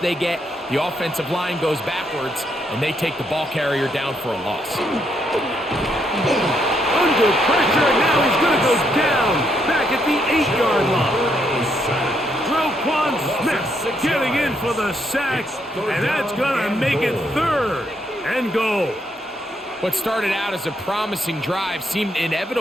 get. The offensive line goes backwards, and they take the ball carrier down for a loss. Under pressure, and now he's going to go down back at the 8-yard line. Roquan Smith getting in for the sack, and that's going to make it 3rd and goal. What started out as a promising drive seemed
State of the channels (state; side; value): normal; both; correlation 0.75